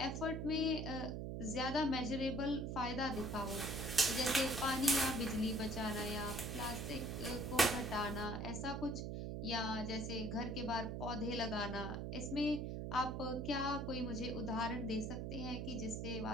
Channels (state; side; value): noise; right; hum, 3 dB below the sound